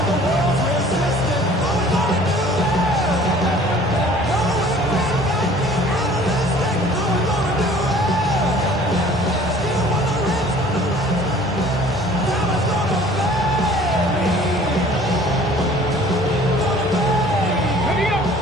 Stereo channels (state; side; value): normal; both; correlation 0.51